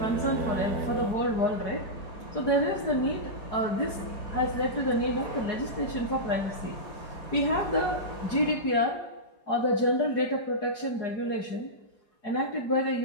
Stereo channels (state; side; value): late; right; 4.8 ms